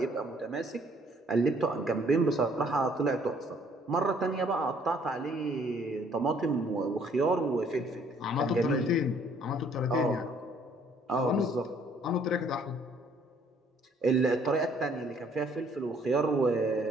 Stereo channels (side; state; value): both; normal; correlation 0.62